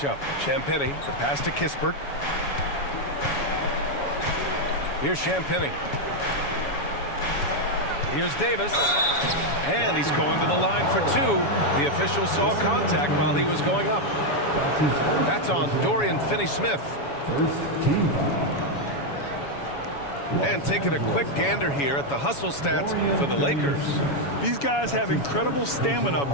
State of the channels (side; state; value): right; late; 7.1 ms